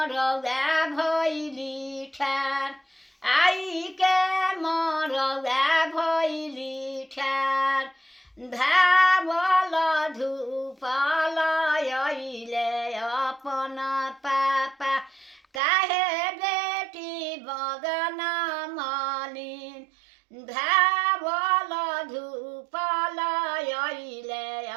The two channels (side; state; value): left; drops out; at 15.6 s